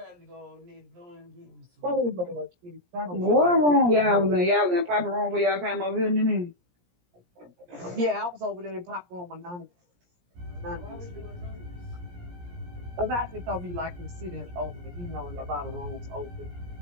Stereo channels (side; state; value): left; late; 17 ms